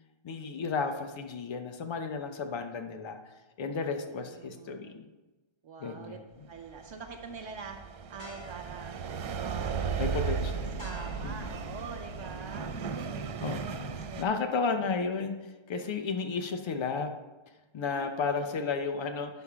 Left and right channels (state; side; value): late; right; 1.3 ms